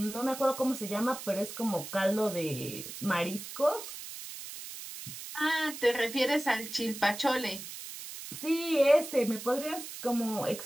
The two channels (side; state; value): right; noise; hiss, 10 dB below the sound